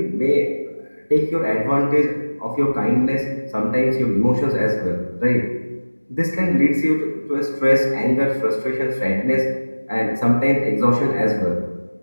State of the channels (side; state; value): both; inverted; correlation -1.00